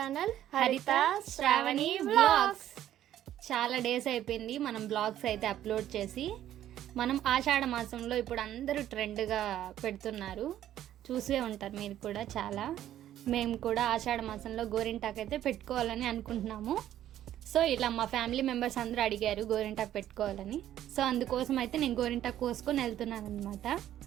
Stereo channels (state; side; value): quieter; left; 12.0 dB